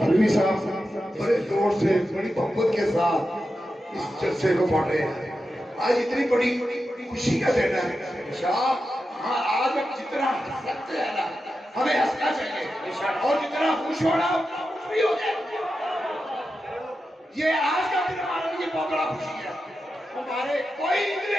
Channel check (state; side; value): normal; both; correlation 0.90